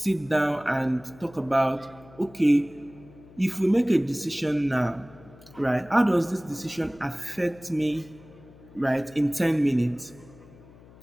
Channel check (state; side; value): noise; left; hum, 23 dB below the sound